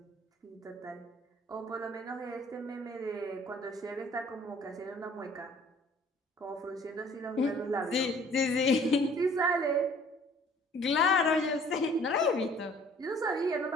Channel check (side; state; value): both; normal; correlation 0.55